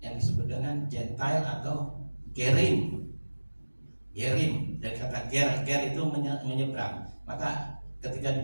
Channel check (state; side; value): inverted; both; correlation -1.00